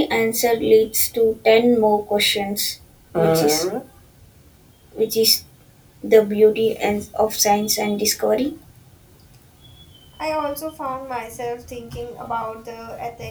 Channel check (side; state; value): both; identical; correlation 1.00